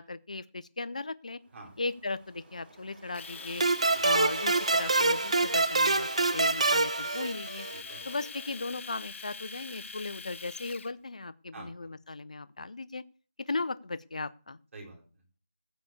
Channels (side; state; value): both; inverted; correlation -0.61